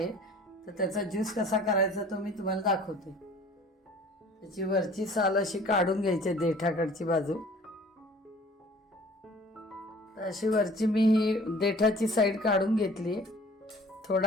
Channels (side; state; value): both; normal; correlation 0.50